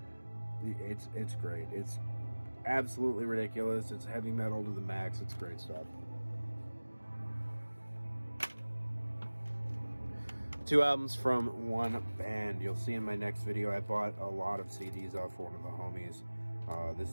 it's great. It's absolutely ridiculous. It's heavy metal to the max. It's great stuff. 2 albums from one band. You'll see in my next video, I bought a lot of CDs off one of the homies.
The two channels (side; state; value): both; inverted; correlation -1.00